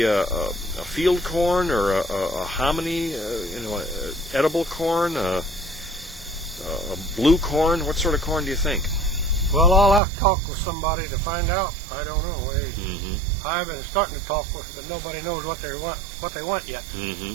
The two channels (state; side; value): drops out; left; at 10.0 s